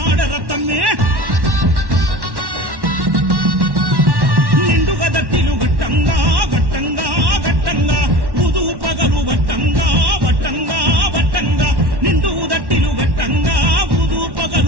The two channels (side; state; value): left; late; 1.1 ms